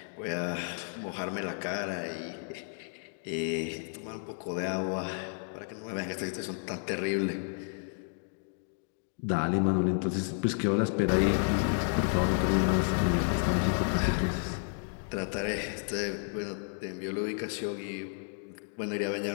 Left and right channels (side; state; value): right; silent; 57 dB below the other